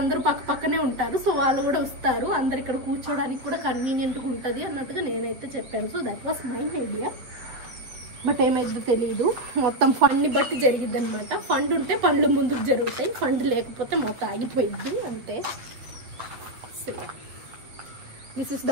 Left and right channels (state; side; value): late; left; 8.4 ms